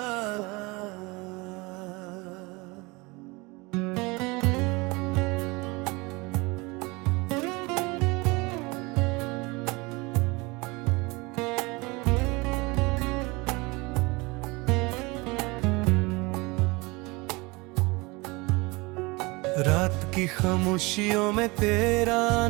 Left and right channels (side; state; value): left; quieter; 25.1 dB